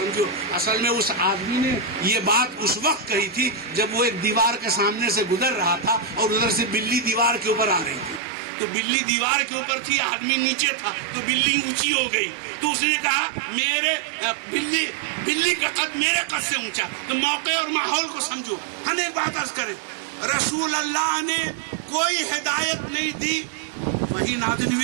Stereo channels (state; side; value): drops out; left; at 8.2 s